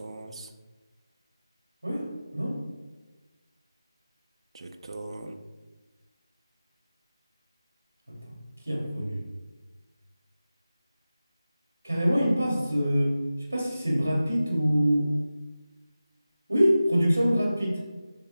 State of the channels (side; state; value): both; inverted; correlation -0.95